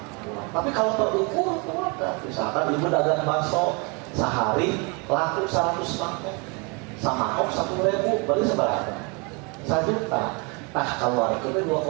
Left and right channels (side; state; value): left; quieter; 31.2 dB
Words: Tapi kalau terukur, keluarkan. Misalkan ibu dagang bakso sehari laku 100 mangkok, sama kok 1.000, berarti seberapa? 1 juta. Nah, keluarkan